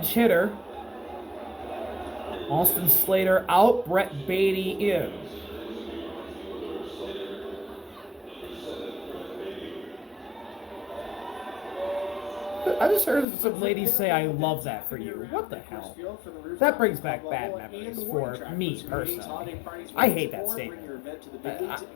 hitter. Austin Slater out, Brett Beatty in. I just heard some ladies say, "I love that for you." What the hell? That brings back bad memories for me personally. I hate that statement.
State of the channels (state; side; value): drops out; right; at 13.2 s